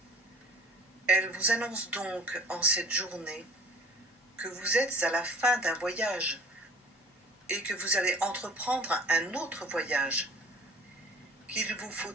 Elle vous annonce donc en cette journée que vous êtes à la fin d'un voyage et que vous allez entreprendre un autre voyage, qu'il vous faut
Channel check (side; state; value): both; normal; correlation 0.48